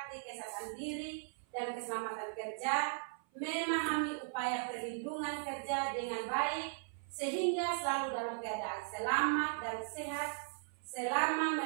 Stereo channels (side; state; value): left; silent; 53 dB below the other